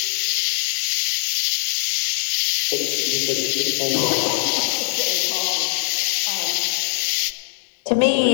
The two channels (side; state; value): right; silent; digital silence